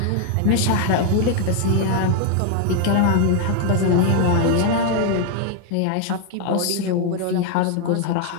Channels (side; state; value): both; different; correlation 0.00